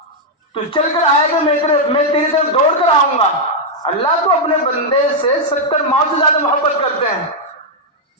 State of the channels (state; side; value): normal; both; correlation -0.02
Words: تو چل کر آئے گا، میں تیری طرف دوڑ کر آؤں گا. اللہ تو اپنے بندے سے 70 ماہ سے زیادہ محبت کرتے ہیں.